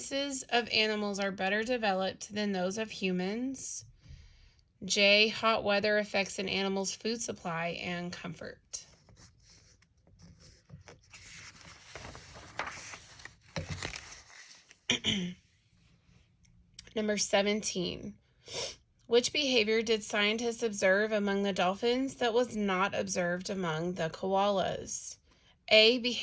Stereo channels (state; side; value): identical; both; correlation 1.00